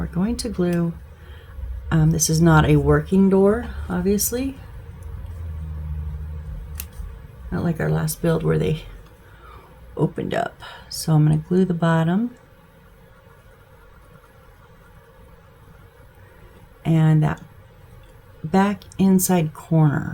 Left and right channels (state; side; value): identical; both; correlation 1.00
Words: going to glue. This is not a working door, obviously. Not like our last build where they opened up. So I'm going to glue the bottom. And that back inside